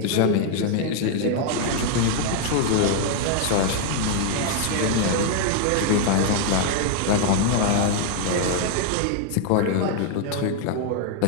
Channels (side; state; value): both; different; correlation 0.00